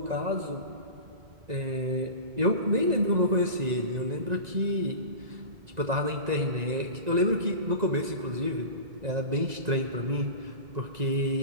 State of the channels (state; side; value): late; left; 1.9 ms